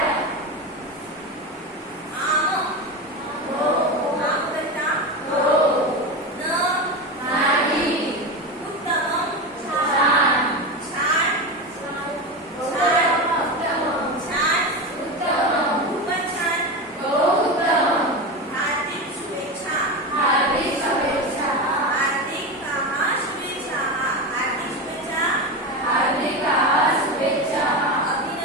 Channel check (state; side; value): normal; both; correlation 0.20